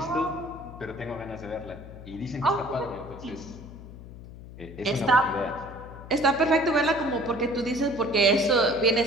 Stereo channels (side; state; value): left; noise; hum, 15 dB below the sound